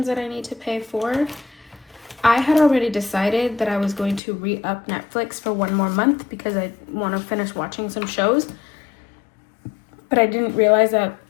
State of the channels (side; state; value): right; drops out; at 4.2 s